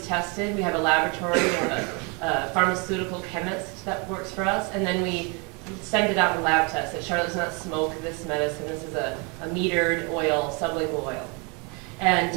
tested. We have a laboratory. We have a pharmaceutical chemist that works for us, and then we send it out in lab tests. Charlotte does not smoke this medicine. This is a metered oil, sublingual oil.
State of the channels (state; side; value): quieter; left; 32.0 dB